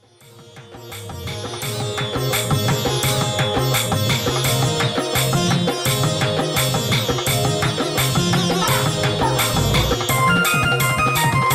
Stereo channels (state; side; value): identical; both; correlation 1.00